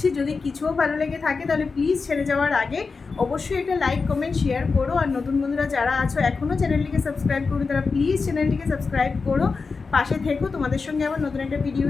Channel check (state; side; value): quieter; right; 4.6 dB